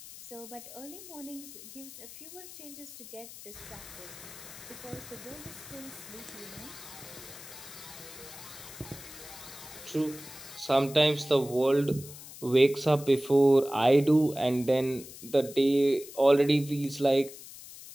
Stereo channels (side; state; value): left; noise; hiss, 15 dB below the sound